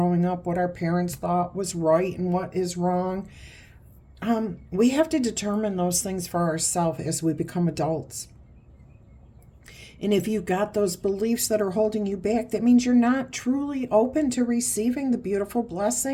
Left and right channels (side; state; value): both; identical; correlation 1.00